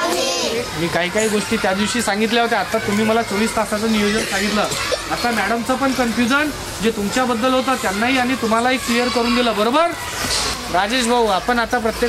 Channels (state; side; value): identical; both; correlation 1.00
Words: मी काही गोष्टी त्या दिवशी सांगितल्या होत्या. आता तुम्ही मला 24 तासाचं नियोजन सांगितलं. आता मॅडमचं पण कन्फ्युजन जे तुमच्याबद्दल होतं त्यांनाही आणि तुम्हालाही क्लिअर करून दिलं, बरोबर? राजेश भाऊ, आपण आता